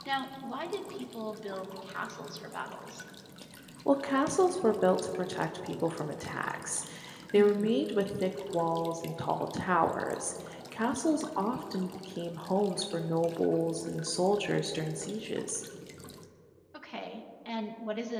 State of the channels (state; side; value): identical; both; correlation 1.00